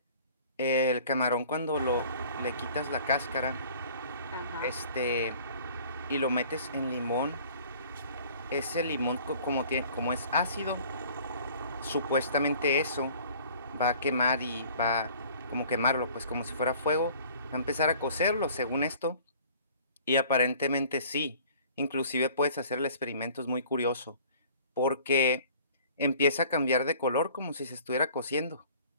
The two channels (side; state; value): both; inverted; correlation -0.51